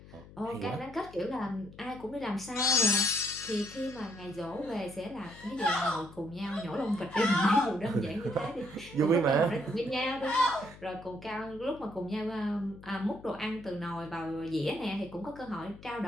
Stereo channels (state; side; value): noise; left; hum, 19 dB below the sound